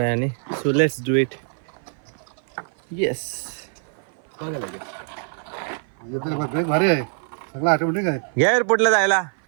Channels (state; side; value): silent; left; 56 dB below the other